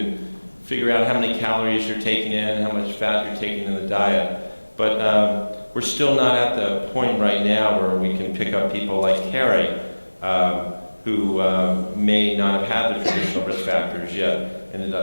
figure out how many calories you're taking in, how much fat you're taking in the diet. But we're still not at the point right now where we can pick up people like Carrie, who may not have had the traditional risk factors yet, ended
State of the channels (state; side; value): inverted; both; correlation -1.00